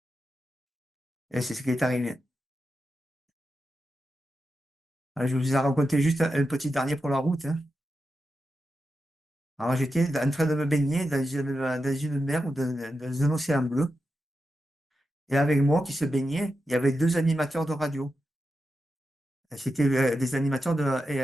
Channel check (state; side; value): normal; both; correlation 0.89